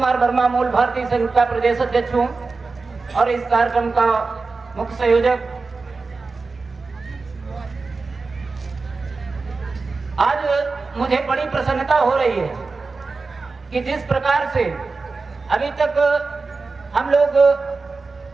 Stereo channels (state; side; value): quieter; left; 4.1 dB